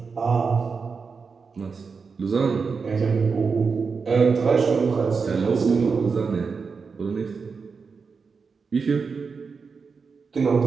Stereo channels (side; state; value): left; quieter; 5.1 dB